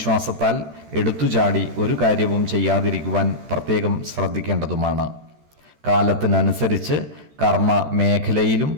എടുത്തുചാടി ഒരു കാര്യവും ചെയ്യാതിരിക്കുവാൻ പ്രത്യേകം ശ്രദ്ധിക്കേണ്ടതുമാണ്. കാലത്തിനനുസരിച്ച് കർമ്മ മേഖലയിലും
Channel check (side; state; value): left; late; 13 ms